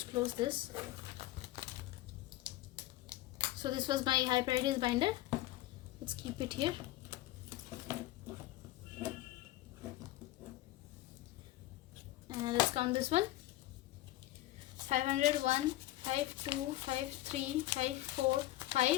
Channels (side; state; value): right; quieter; 16.1 dB